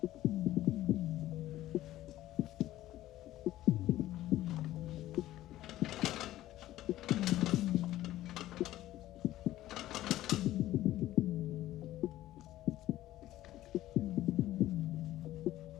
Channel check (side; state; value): right; quieter; 14.7 dB